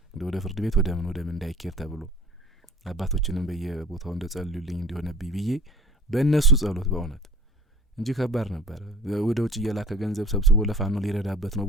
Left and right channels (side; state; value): both; normal; correlation 0.47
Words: ወደ ፍርድ ቤት ወደ ምን እንዳይኬር ተብሎ አባቶችንም በየቦታው እንደጸልዩልኝ እንዲሆነብኝ ብዬ በእነሱ ጸሎት በእውነት እንጂ ከባድ ነበር። ወደ ውጭ እየላከ ገንዘብ ሰብስቦ ለፋኖ ሊረዳበት ነው